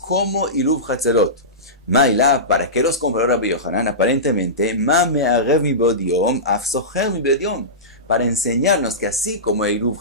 Iruv Hatzerot. Maila, ¿para qué los compró Rabbi Yohanan? Aparentemente, ma me arev mi bodiom, af socher mi bodiom. Para enseñarnos que así como Iruv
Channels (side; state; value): both; normal; correlation -0.19